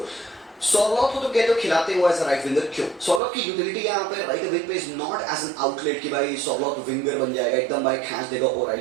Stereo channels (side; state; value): left; drops out; at 3.2 s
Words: सॉर्लॉट को तो कहते हो खिलाते हुए एज अ राइट विंगर, क्यों सॉर्लॉट की यूटिलिटी यहाँ पे राइट विंग पे is not as an outlet कि भाई सॉर्लॉट विंगर बन जाएगा एकदम भाई खींच देगा और